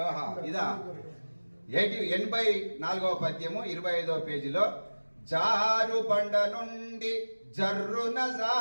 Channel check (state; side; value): inverted; both; correlation -1.00